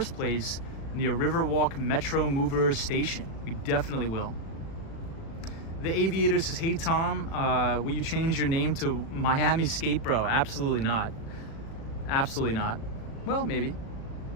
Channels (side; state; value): right; late; 36 ms